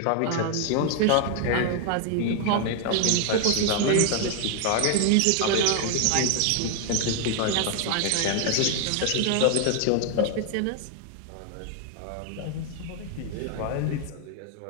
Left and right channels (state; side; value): different; both; correlation 0.00